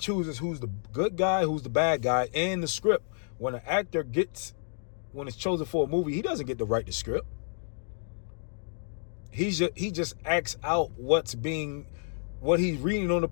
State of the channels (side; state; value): right; silent; digital silence